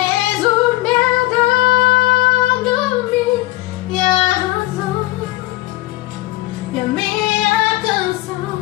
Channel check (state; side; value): quieter; right; 18.5 dB